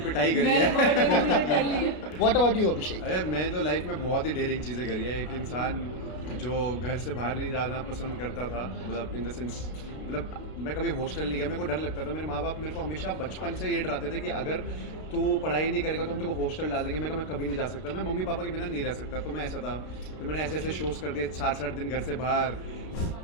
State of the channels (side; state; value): right; late; 32 ms